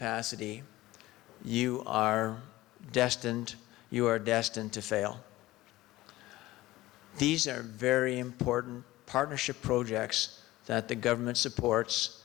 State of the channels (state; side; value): quieter; right; 17.5 dB